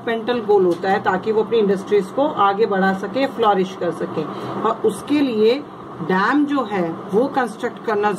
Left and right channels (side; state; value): both; identical; correlation 1.00